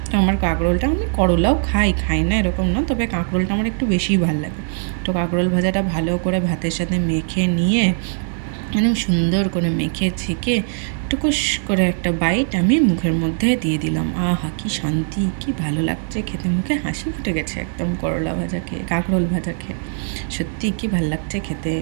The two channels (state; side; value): silent; left; 65 dB below the other